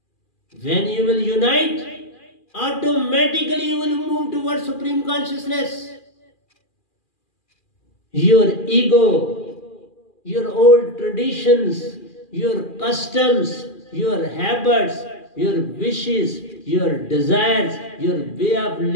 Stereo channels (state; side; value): late; right; 2.4 ms